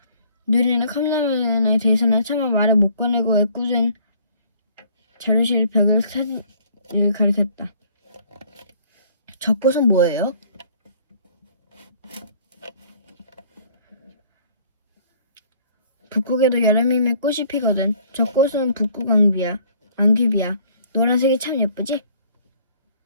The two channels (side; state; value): both; inverted; correlation -0.58